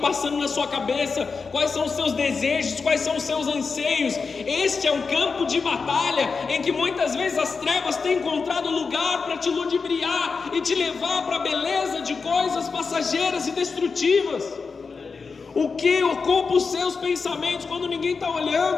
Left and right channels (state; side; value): quieter; right; 4.9 dB